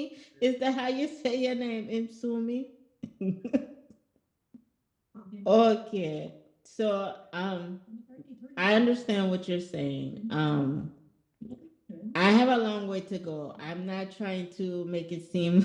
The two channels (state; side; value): identical; both; correlation 1.00